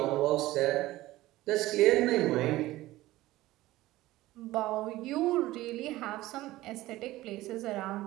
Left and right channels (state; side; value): quieter; left; 17.0 dB